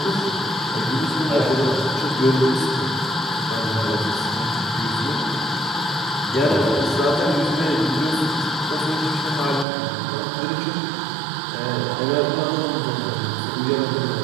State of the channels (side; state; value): left; drops out; at 9.7 s